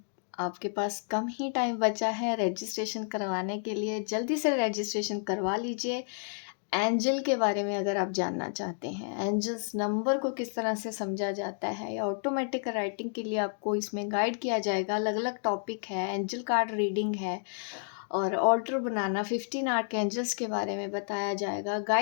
आपके पास कम ही टाइम बचा है रजिस्ट्रेशन करवाने के लिए। जल्दी से रजिस्ट्रेशन करवा लीजिए। एंजल के बारे में अगर आप जानना चाहते हैं, एंजल्स नंबर को किस तरह से समझा जाता है या ऑटोमेटिक राइटिंग के लिए आपको इसमें गाइड किया जाएगा। अलग अलग टॉपिक है, एंजल कार्ड रीडिंग है और ऑर्डर बनाना, 15 आर्क एंजल्स के बारे में बताया जाएगा।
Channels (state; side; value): silent; right; digital silence